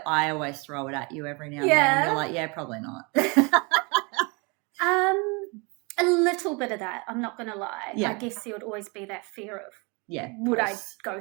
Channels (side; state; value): left; quieter; 30.1 dB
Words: I always throw it at you every now and then. You're like, yeah, probably not. A little bit of that, I'm not going to lie. I guess there would always be that fear of, would I go